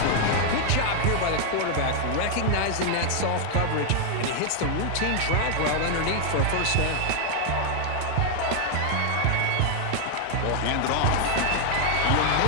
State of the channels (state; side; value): different; both; correlation 0.00